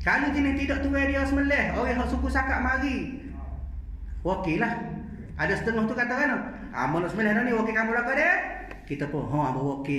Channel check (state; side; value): identical; both; correlation 1.00